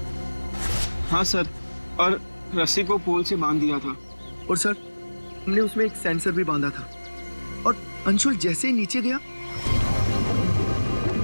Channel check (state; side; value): inverted; both; correlation -1.00